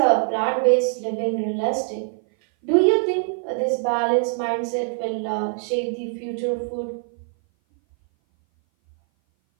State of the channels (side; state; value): left; silent; 58 dB below the other